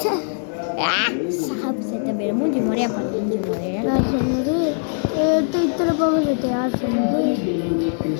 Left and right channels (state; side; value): silent; right; digital silence